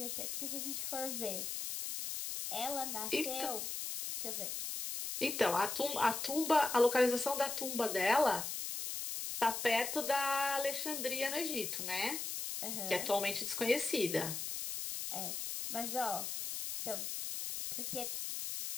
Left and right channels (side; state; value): left; noise; hiss, 4 dB below the sound